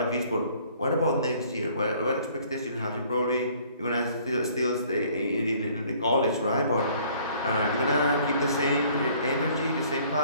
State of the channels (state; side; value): inverted; both; correlation -0.57